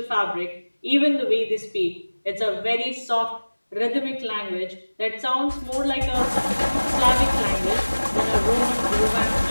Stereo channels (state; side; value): inverted; both; correlation -1.00